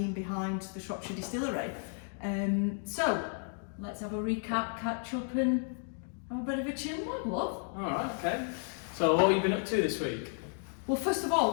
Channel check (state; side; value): silent; right; 56 dB below the other